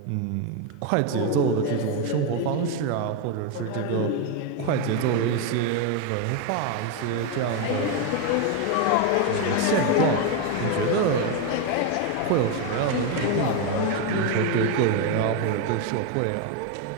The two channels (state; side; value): different; both; correlation 0.02